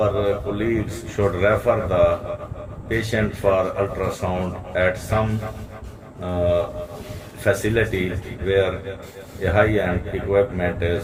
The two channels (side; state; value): both; identical; correlation 1.00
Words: colleagues should refer the patient for ultrasound at some facility where a high-end equipment